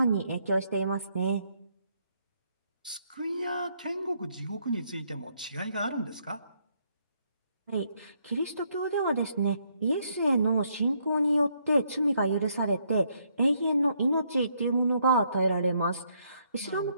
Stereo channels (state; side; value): inverted; both; correlation -0.73